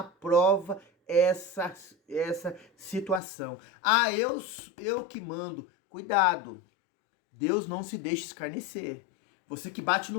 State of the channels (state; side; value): drops out; right; at 3.2 s